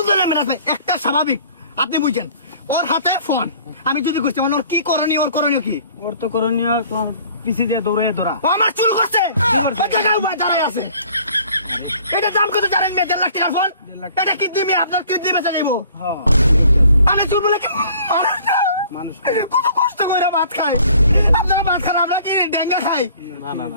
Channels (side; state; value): both; inverted; correlation -0.54